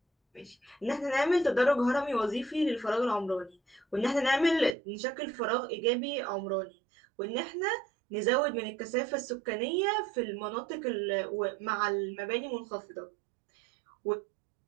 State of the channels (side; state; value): left; drops out; at 4.7 s